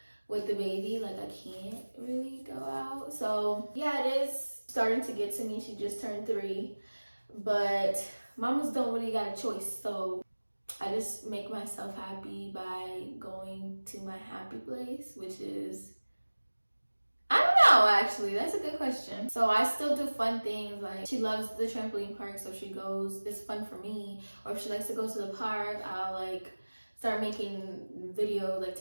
with the baby, like I can't really go out. So yeah, it is starting to get to me. She just turned 3, but mamas don't really got a choice, so I just make myself happy by going to my happy place, which is, I don't know, actually, that's a good question. So I still do fun things, like she loves the trampoline park, so she goes, it's fun for me. Or if she likes to go to the park, I'll like start making videos like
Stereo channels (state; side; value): inverted; both; correlation -1.00